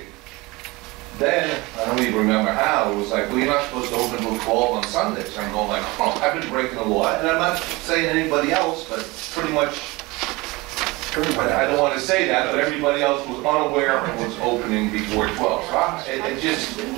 Then, I don't even remember how, it was like, well, you're not supposed to open until 12 on Sundays. I'm going like, oh, I've been breaking the law. And I'm not saying anybody else, but pretty much, I don't want to say that, but everybody else was unaware and was opening before 12. So it just,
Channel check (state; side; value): quieter; left; 23.0 dB